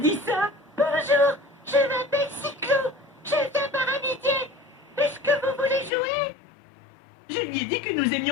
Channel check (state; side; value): drops out; right; at 5.9 s